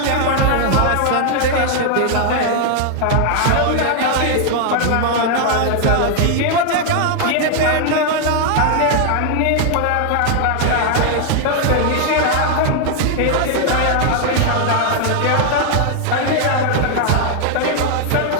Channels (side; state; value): both; different; correlation 0.00